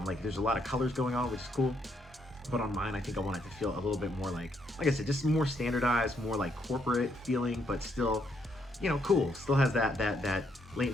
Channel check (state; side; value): normal; both; correlation 0.74